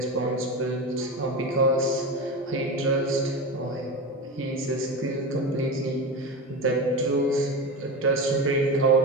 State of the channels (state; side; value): normal; both; correlation 0.23